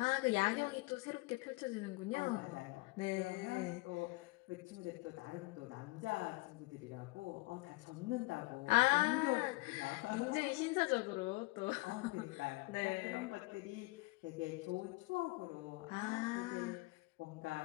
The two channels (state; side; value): quieter; right; 24.5 dB